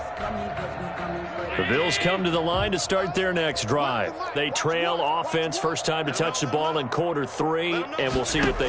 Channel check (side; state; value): both; identical; correlation 1.00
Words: The Bills come to the line to start their next drive. They trail offense, first time to touch the ball in quarter 3, and we'll see what